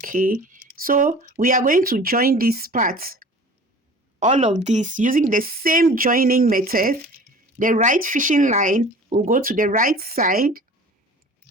so we are going to join this part, all of this, using the same joining method. The right fishing line will go to the right side,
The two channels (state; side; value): normal; both; correlation 0.43